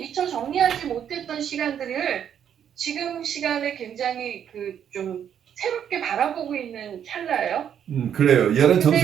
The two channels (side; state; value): left; quieter; 9.0 dB